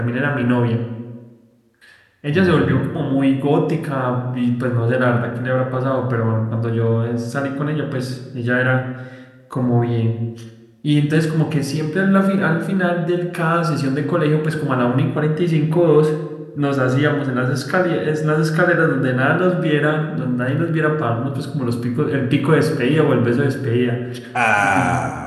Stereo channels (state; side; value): identical; both; correlation 1.00